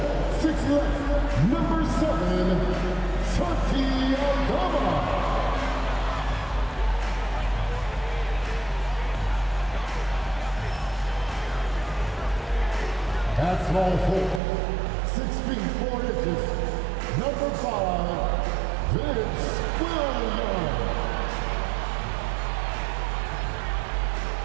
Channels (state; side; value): drops out; left; at 14.4 s